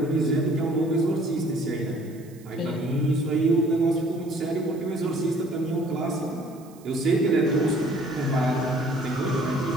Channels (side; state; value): right; noise; hiss, 26 dB below the sound